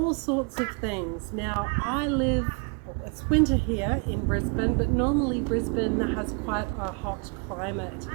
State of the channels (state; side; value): quieter; left; 34.8 dB